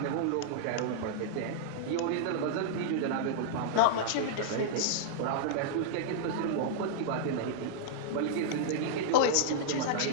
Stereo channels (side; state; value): both; different; correlation -0.02